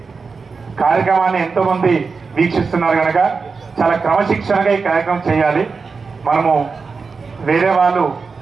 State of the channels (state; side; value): quieter; left; 4.8 dB